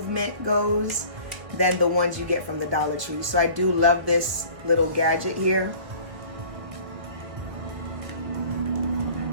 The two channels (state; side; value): late; left; 1.8 ms